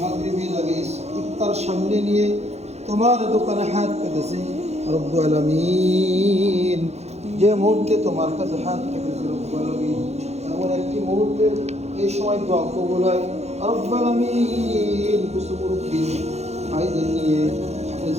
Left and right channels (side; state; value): left; late; 0.31 ms